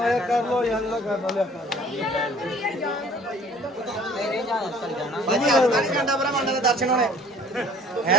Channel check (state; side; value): normal; both; correlation 0.52